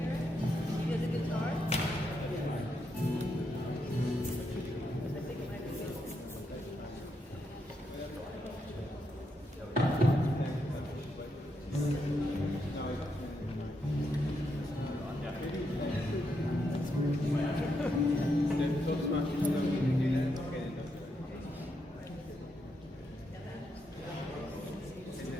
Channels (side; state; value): both; normal; correlation 0.81